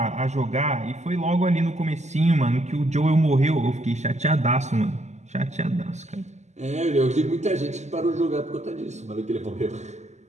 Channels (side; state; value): left; late; 0.33 ms